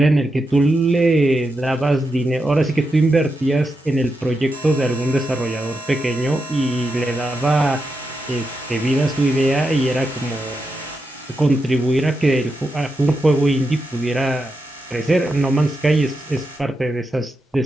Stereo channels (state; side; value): normal; both; correlation 0.86